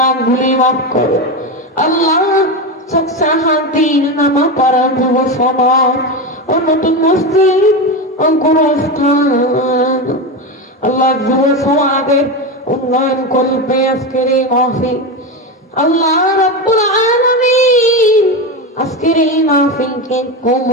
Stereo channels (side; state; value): both; normal; correlation 0.17